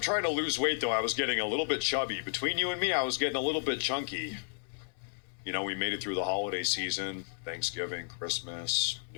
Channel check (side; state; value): right; silent; 56 dB below the other